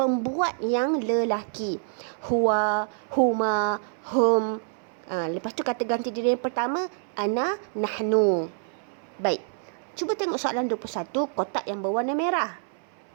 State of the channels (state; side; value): silent; left; 60 dB below the other